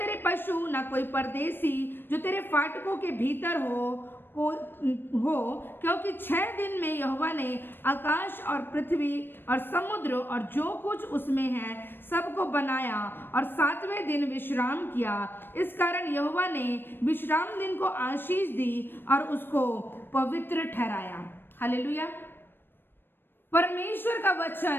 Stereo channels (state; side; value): late; right; 0.097 ms